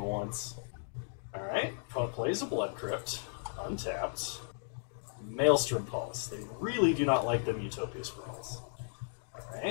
once. Alright, opponent plays a Blood Crypt, untapped. Maelstrom Pulse. They really do not like them Utopia Sprawls.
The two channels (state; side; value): silent; right; digital silence